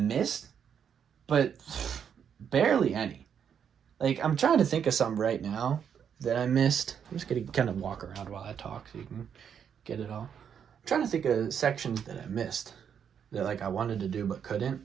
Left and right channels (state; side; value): quieter; left; 7.9 dB